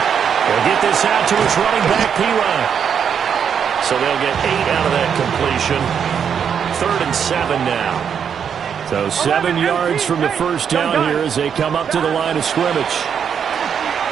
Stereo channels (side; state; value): left; quieter; 7.6 dB